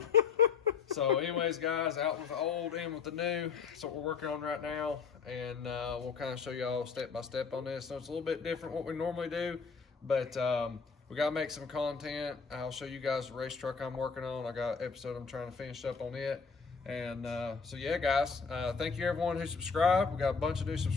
So anyways, guys, out with the old, in with the new. That's what we're working on right now. And we'll kind of show y'all step by step on this. So it's a little bit different what we normally do, but we got to make some content. I'll show you guys the race truck I'm working on. I got an episode I'm trying to finish up on it. And so yeah, guys, thank you everyone who subscribed. We got a bunch of new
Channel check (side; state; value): right; quieter; 5.5 dB